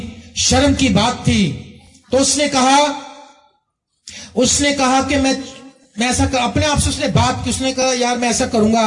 شرم کی بات تھی۔ تو اس نے کہا کہ میں ایسا اپنے آپ سے اس نے بات کی، اس نے کہا یار میں ایسا کروں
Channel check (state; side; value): identical; both; correlation 1.00